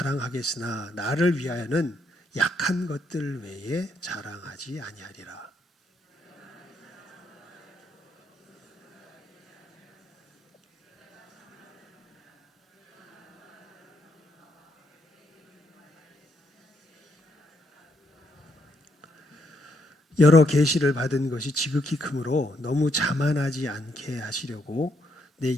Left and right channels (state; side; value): normal; both; correlation 0.75